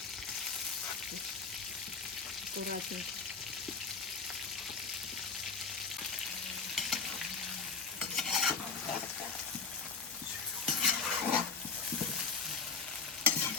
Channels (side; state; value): right; quieter; 5.0 dB